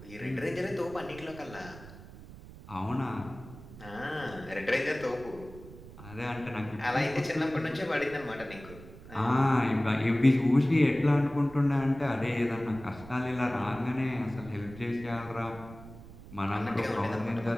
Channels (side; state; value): right; noise; rumble, 17 dB below the sound